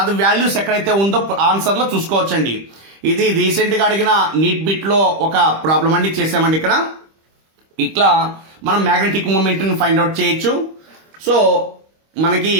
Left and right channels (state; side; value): late; left; 25 ms